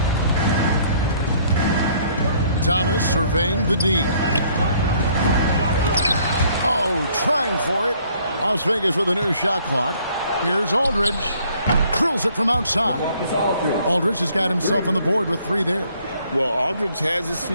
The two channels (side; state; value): both; inverted; correlation -0.62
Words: Thomas surveying the D. Oh, trying for it. Las Vegas with a new shot clock. Here's Aldridge. Drills it from outside. Aldridge has got himself on the board with 3 there. Well, Aldridge has his